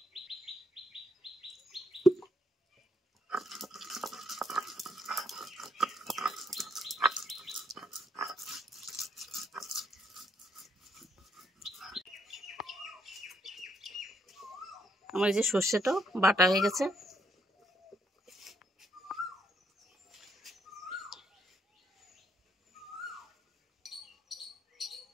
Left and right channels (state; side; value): normal; both; correlation 0.73